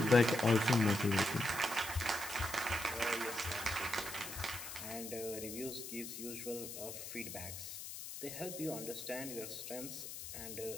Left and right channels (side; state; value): left; noise; hiss, 9 dB below the sound